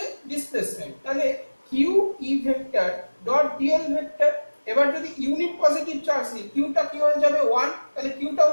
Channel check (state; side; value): inverted; both; correlation -1.00